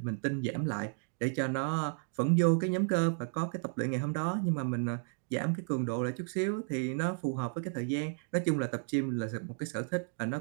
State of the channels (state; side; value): silent; left; 56 dB below the other